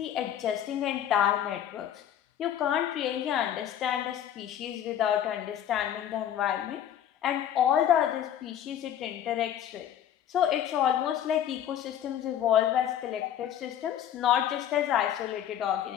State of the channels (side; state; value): right; quieter; 10.3 dB